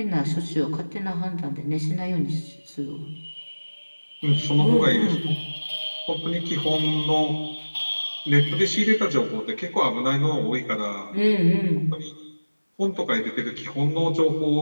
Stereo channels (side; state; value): both; inverted; correlation -1.00